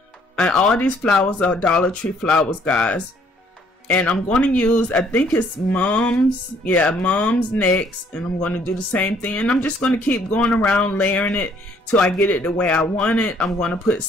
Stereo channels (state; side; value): normal; both; correlation 0.64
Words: and all these flowers are Dollar Tree flowers, guys. And I'm going to use, I think it's Mom's next, and I'm going to do the same thing, and I'm just going to keep going around layering it till I get it the way I want it. I'm going to put